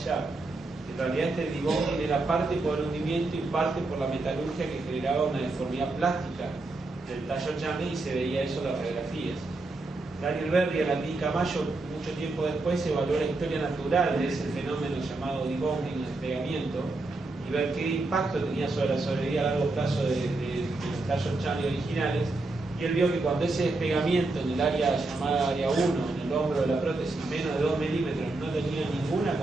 En realidad este debonding era parte por el hundimiento y parte por la metalurgia, que generaba una deformidad plástica del tallo Chamley, y se veía eso en las radiografías. Daniel Berry en la clínica Mayo, mucho tiempo después, evaluó la historia natural de ese fenómeno llamado debonding o despegamiento, y ver qué impacto tenía sobre la sobrevida a largo plazo de los tallos Chamley originales. Y él vio que cuando ese despegamiento en el área llamada área 1, en el hombro de la prótesis, menos de 2 milímetros, no tenía ninguna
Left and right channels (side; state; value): left; quieter; 3.2 dB